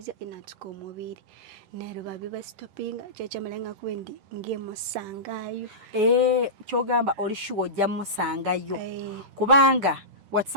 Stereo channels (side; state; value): left; late; 10 ms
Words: inatuka omubiri nero babiba stopping kyekyamalanga kubendi ngemusangayo kyogamba oli sure ojja musangayo kubanga